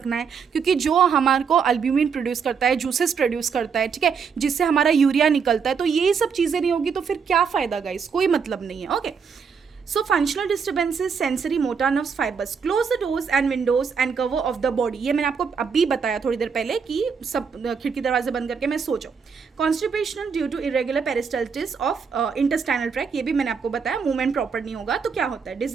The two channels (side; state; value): left; quieter; 6.1 dB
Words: है, क्योंकि जो हमारे को अल्ब्यूमिन प्रोड्यूस करता है, जूसेस प्रोड्यूस करता है, ठीक है, जिससे हमारा यूरिया निकलता है, तो ये सब चीज़ें नहीं होगी तो फिर क्या फ़ायदा गाइस, कोई मतलब नहीं है। Okay, so functional disturbances, sensory motor nerves fibres, close the doors and Windows and cover of the body. ये मैंने आपको अभी बताया थोड़ी देर पहले कि सब खिड़की दरवाजे बंद करके मैं सो जाऊँ। Constipation due to irregular peristalsis of intestinal tract, ये भी मैंने आपको बताया, मूवमेंट प्रॉपर नहीं होगा तो क्या होता है,